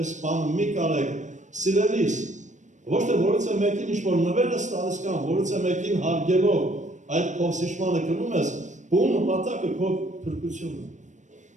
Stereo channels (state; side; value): late; left; 0.35 ms